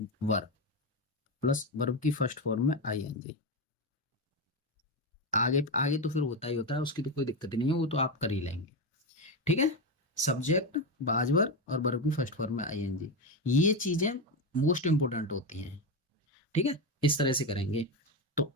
वर प्लस वर्ब की फर्स्ट फॉर्म में ING। आगे आगे तो फिर होता ही होता है, उसकी तो कोई दिक्कत ही नहीं है, वो तो आप कर ही लेंगे। ठीक है। सब्जेक्ट, बाजवर और वर्ब की फर्स्ट फॉर्म में ING, ये चीजें मोस्ट इंपोर्टेंट होती हैं। ठीक है, इस तरह से करेंगे। तो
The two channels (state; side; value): normal; both; correlation 0.13